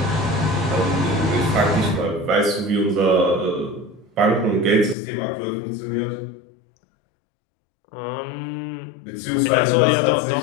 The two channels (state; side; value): drops out; right; at 5.0 s